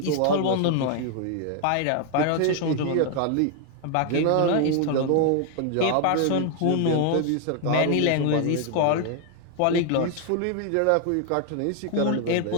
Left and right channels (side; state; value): both; different; correlation 0.00